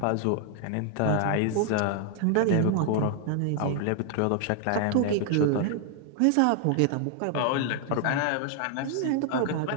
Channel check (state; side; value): different; both; correlation 0.00